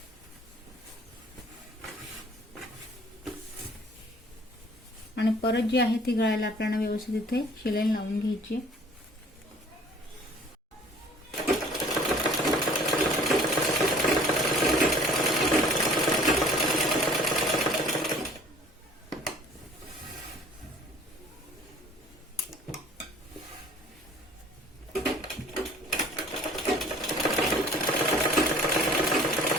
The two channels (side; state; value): both; normal; correlation 0.51